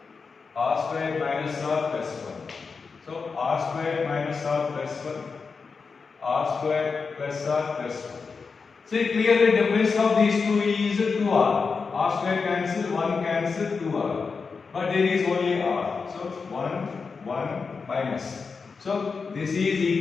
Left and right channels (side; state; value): right; quieter; 5.0 dB